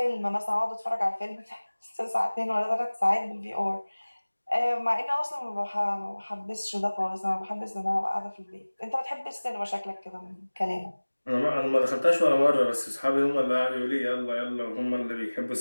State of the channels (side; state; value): both; inverted; correlation -1.00